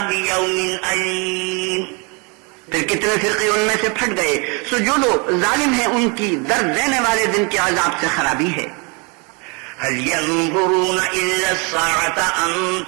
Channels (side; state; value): left; quieter; 31.5 dB